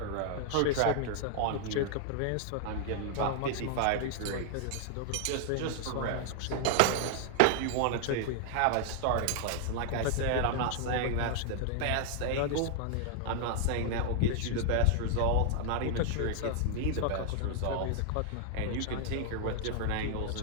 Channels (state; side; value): different; both; correlation 0.00